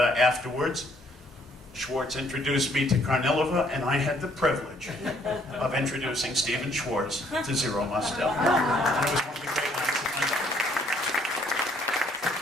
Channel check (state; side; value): normal; both; correlation 0.64